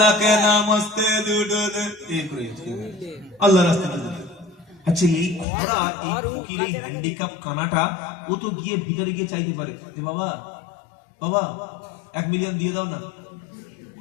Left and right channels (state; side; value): drops out; right; at 5.5 s